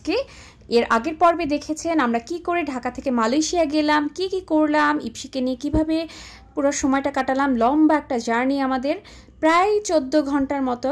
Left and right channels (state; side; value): identical; both; correlation 1.00